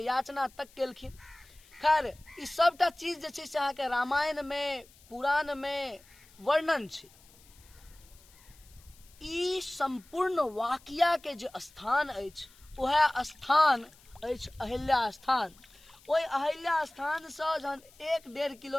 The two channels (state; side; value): noise; left; hiss, 26 dB below the sound